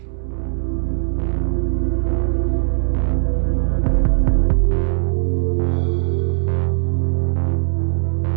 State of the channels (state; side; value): silent; left; 67 dB below the other